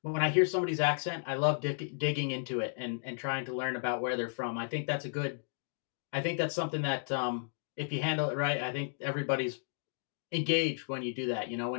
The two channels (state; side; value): silent; right; digital silence